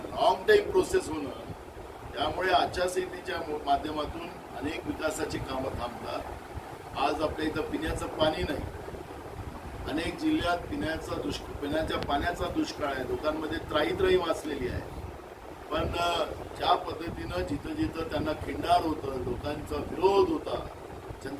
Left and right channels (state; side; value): identical; both; correlation 1.00